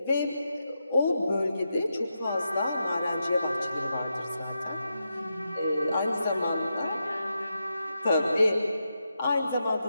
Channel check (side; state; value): both; inverted; correlation -0.86